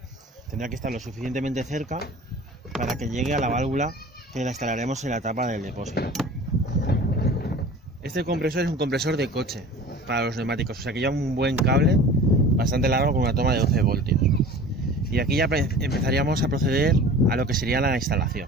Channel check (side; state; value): both; normal; correlation 0.41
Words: Tendrá que estar lo suficientemente cerca para que llegue a la válvula que la instalaremos en la tapa del depósito. Este compresor es un compresor de coche para los neumáticos, o sea que lleva un buen cable bastante largo con una toma de 12 voltios. Y aquí ya empezaríamos a proceder a lo que sería la instalación.